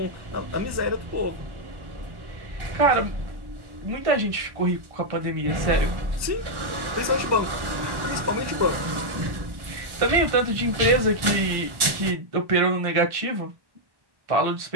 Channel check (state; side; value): late; left; 1.1 ms